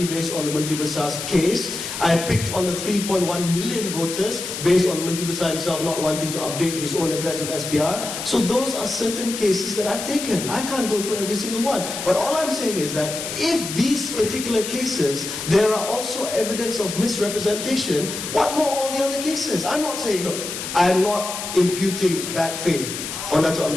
based on the Menteri Besar's case. I picked on the 3.1 million voters based on Menteri Besar himself not wanting to update his own address with SPR. So those are certain cases that I've taken. I can't go through every single one. But all I'm saying is that if these particular cases, there are also evidence of misrepresentation, what more all the other cases? I'm not saying, look, I'm not imputing bad faith on Dato'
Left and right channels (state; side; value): noise; left; hiss, 6 dB below the sound